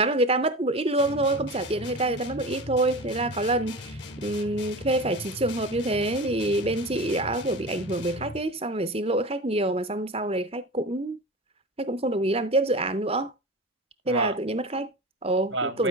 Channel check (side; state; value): both; normal; correlation 0.30